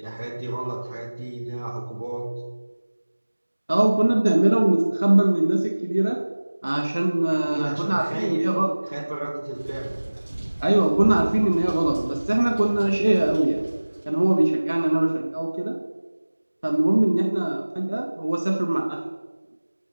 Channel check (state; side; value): inverted; both; correlation -1.00